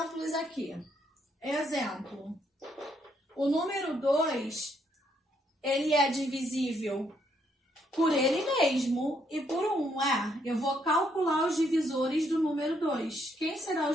aqui. Exemplo, o número 2, ele é divisível por ele mesmo e por 1, Eu vou calcular os divisores do número 2. Quem serão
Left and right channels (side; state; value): both; normal; correlation 0.73